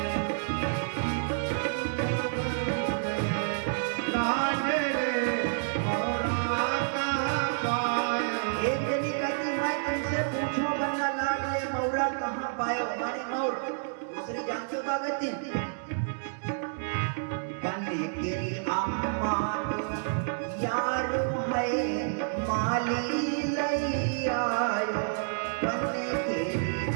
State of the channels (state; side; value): silent; left; digital silence